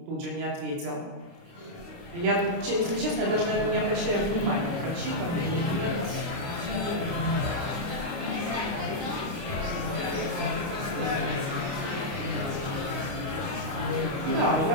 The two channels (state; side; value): late; left; 29 ms